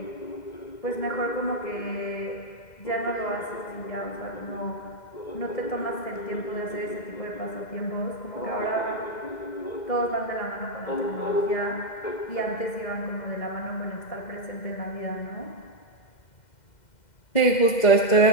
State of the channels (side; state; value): right; late; 2.1 ms